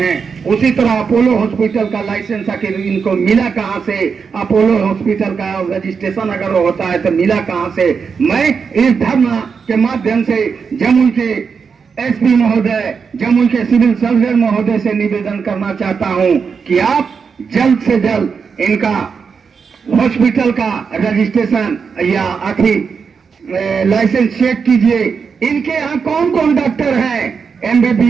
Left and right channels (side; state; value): left; quieter; 5.8 dB